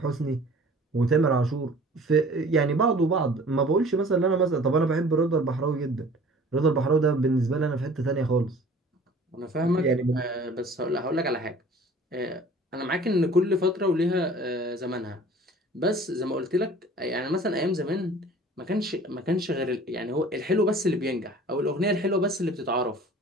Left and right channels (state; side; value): normal; both; correlation 0.47